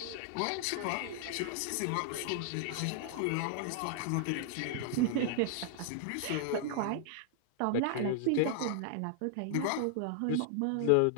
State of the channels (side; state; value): both; different; correlation -0.01